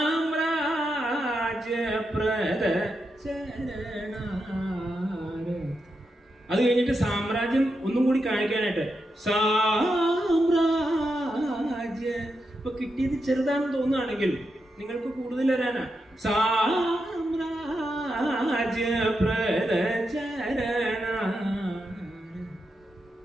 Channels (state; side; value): normal; both; correlation 0.86